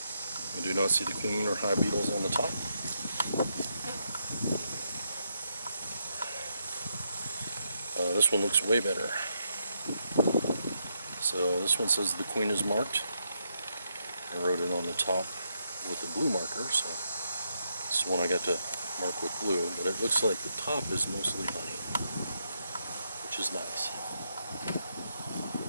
We do not see the queen or hive beetles on the top. This one looks way better. So this one says the queen is marked. I wrote it on the top with the blue marker, so this one I got to mark with blue, but it looks like the top is mostly honey, which is nice.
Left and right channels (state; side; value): inverted; both; correlation -0.80